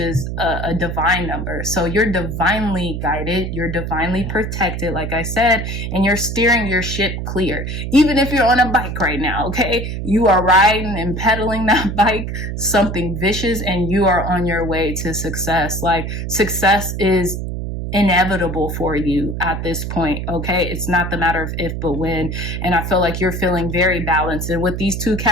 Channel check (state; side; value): noise; right; hum, 4 dB below the sound